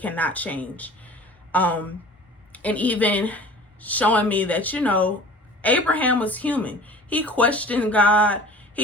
cannot change. And even showing me that, Abraham was human. He questioned God.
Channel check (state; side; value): normal; both; correlation 0.43